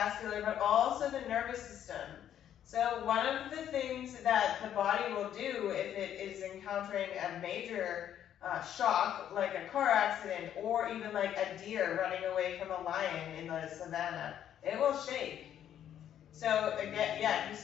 but also the nervous system. So one of the things that the body will do if it is encountering a major shock, like a car accident, or even like a deer running away from a lion in the savannah, it will shake. So again, yeah, if you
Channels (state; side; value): quieter; right; 10.3 dB